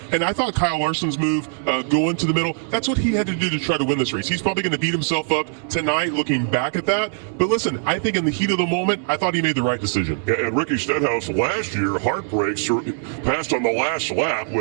And I thought Kyle Larson's move, going to the middle, that's what he had to do to try to win this race. He's probably going to beat himself up tonight looking back at that. But listen, I think in the heat of the moment, I thought he made the right decision. And Ricky Stenhouse last year, heartbreaks, passed on the last lap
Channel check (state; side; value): silent; left; digital silence